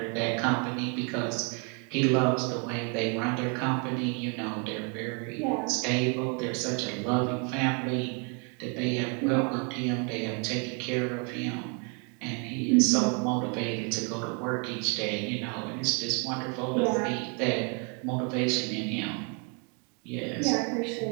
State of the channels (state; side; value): quieter; left; 35.4 dB